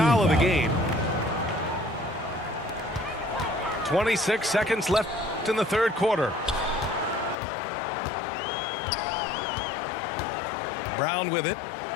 team of the foul. game. 26 seconds left in the third quarter. Brown with it.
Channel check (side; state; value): right; drops out; at 7.4 s